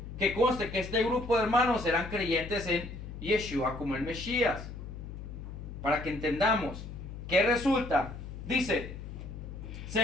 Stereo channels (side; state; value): left; noise; hum, 10 dB below the sound